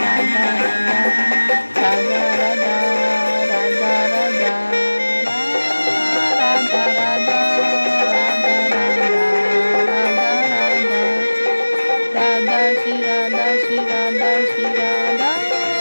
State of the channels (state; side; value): inverted; both; correlation -1.00